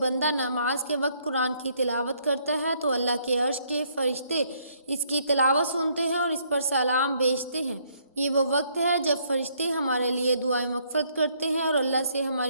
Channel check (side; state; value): both; inverted; correlation -0.68